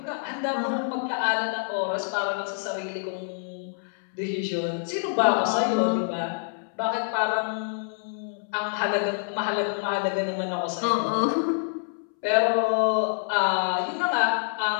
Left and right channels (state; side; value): silent; right; 60 dB below the other